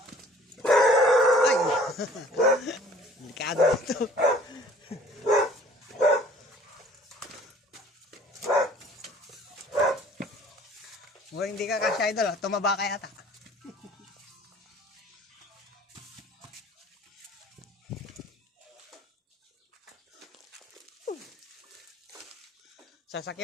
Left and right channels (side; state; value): both; normal; correlation 0.52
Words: Ay! Delikado ito. Mukhang hindi ka kasya Idol, tumaba ka yata.